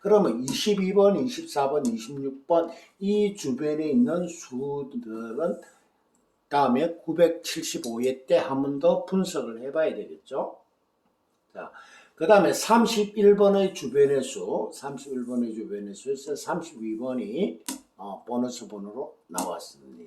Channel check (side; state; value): both; identical; correlation 1.00